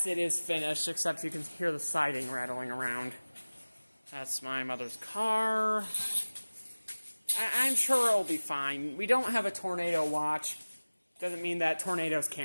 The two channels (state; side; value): inverted; both; correlation -1.00